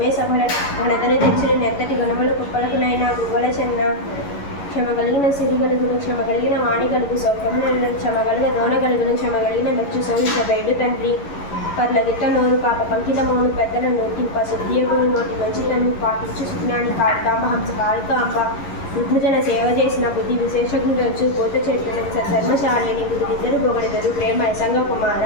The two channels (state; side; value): late; right; 11 ms